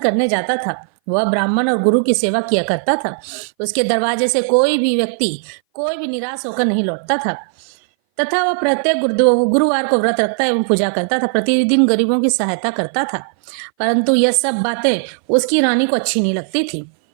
जाता था। वह ब्राह्मण और गुरु की सेवा किया करता था। उसके दरवाजे से कोई भी व्यक्ति कोई भी निराश होकर नहीं लौटता था, तथा वह प्रत्येक गुरुवार को व्रत रखता एवं पूजा करता था। प्रतिदिन गरीबों की सहायता करता था, परंतु यह सब बातें उसकी रानी को अच्छी नहीं लगती थी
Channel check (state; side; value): silent; left; 60 dB below the other